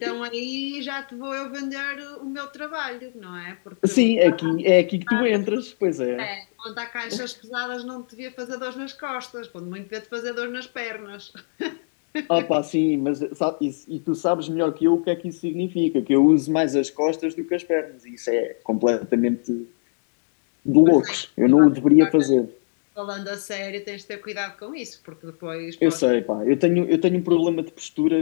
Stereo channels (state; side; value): silent; right; digital silence